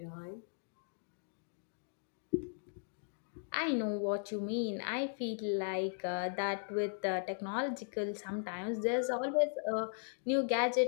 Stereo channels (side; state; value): right; silent; digital silence